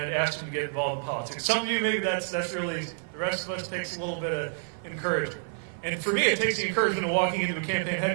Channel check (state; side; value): silent; left; 59 dB below the other